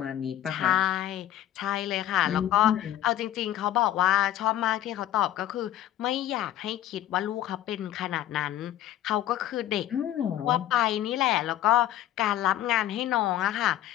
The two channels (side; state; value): right; quieter; 12.7 dB